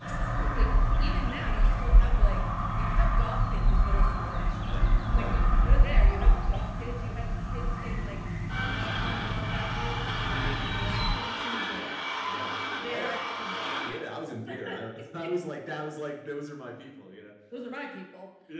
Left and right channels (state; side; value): identical; both; correlation 1.00